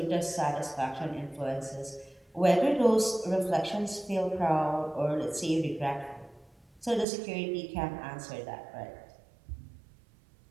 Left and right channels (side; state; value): left; drops out; at 7.1 s